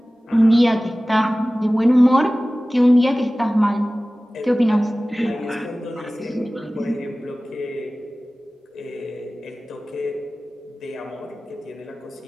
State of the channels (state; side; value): normal; both; correlation 0.97